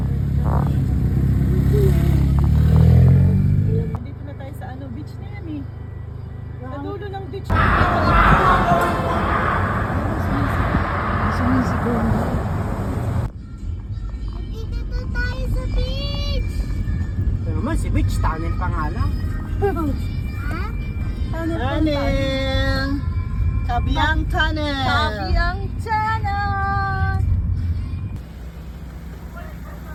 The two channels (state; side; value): identical; both; correlation 1.00